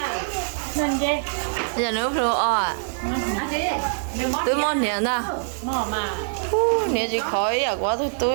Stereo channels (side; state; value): left; silent; 63 dB below the other